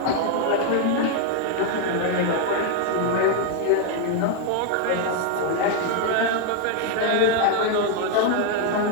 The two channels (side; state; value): both; different; correlation 0.00